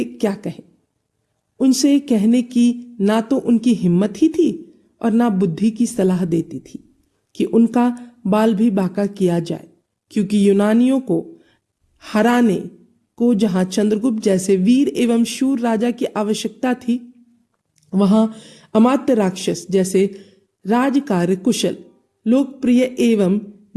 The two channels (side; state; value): both; identical; correlation 1.00